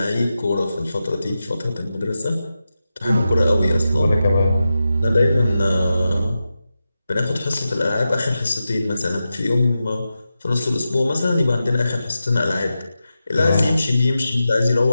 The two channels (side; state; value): both; inverted; correlation -0.90